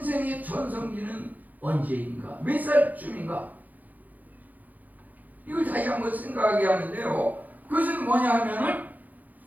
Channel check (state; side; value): late; left; 0.081 ms